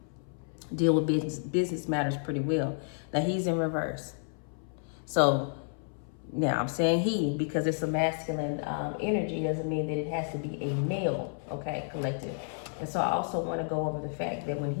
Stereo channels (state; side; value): silent; right; 57 dB below the other